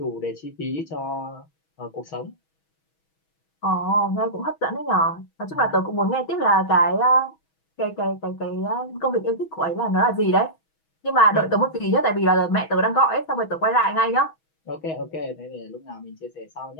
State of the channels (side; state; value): right; late; 6.2 ms